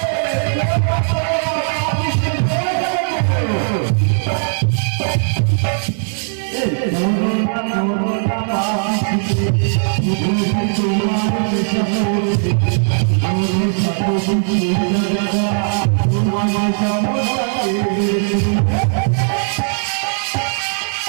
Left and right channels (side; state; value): left; silent; 68 dB below the other